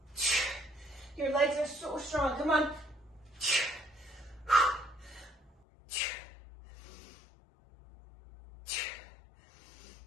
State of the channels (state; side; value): drops out; right; at 5.5 s